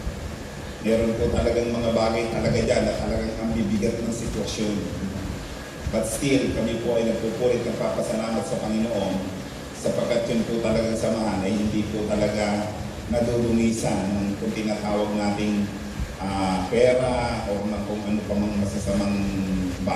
Meron po talagang mga bagay talaga dyan na talagang ang bibigat ng sitwasyon. But still, kami po ay nagpupulit ng papasalamat sa Panginoon sapagkat yun po talagang samahan ay hindi po talaga nadudungisan ng kung tinatawag nating pera o kung ano pa mga masasamang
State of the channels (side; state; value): both; identical; correlation 1.00